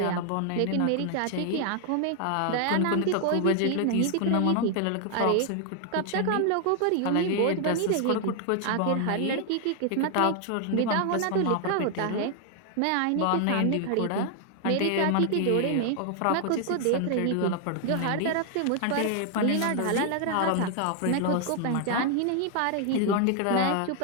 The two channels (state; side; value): different; both; correlation 0.00